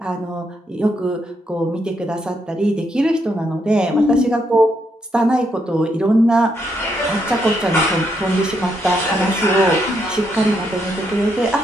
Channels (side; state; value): both; normal; correlation 0.77